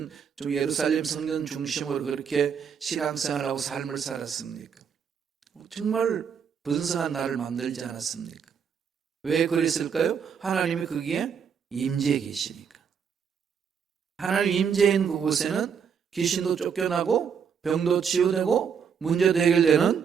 예루살렘 성전 중심으로 그렇게 신앙생활하고 삶을 살았습니까? 정말 번성한 나라를 만들지 않았습니까? 왜 그랬을까요? 하나님이 거기에 임재해 계시니까. 하나님 임재인 그곳에는 귀신도 쫓겨나고 병도 치유되고 문제도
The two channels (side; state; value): left; quieter; 7.0 dB